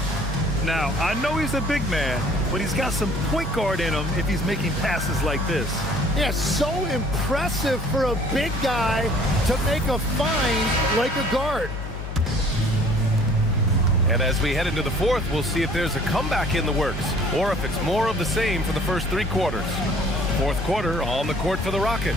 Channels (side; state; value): left; noise; hum, 8 dB below the sound